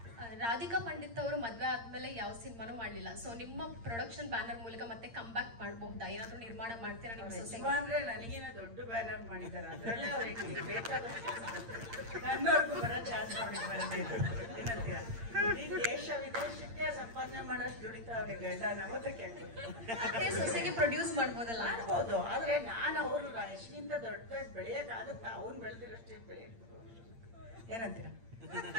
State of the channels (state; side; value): late; left; 8.7 ms